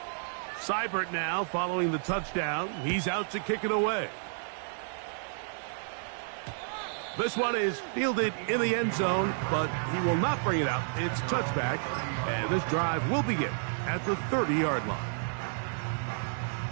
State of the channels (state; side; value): silent; left; digital silence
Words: Seibert now following the touchdown. He's out to kick it away. This one is fielded in the end zone, but he will not bring it out. It's touchback, and this drive will begin at the 30-yard line.